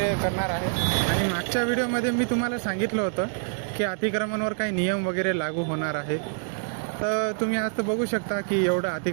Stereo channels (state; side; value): silent; left; digital silence